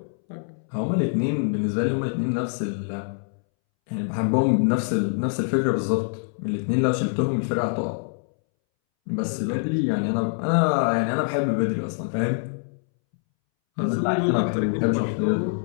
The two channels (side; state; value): right; silent; 62 dB below the other